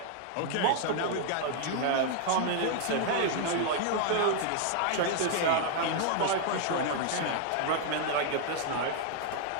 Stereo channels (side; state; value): both; different; correlation 0.00